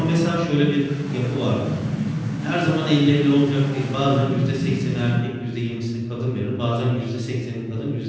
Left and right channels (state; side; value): identical; both; correlation 1.00